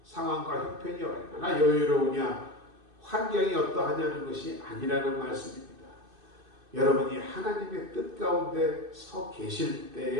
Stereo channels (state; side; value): late; left; 2.5 ms